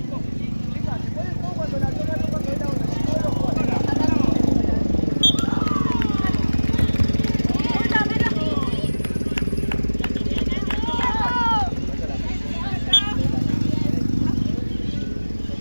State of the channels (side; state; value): both; inverted; correlation -1.00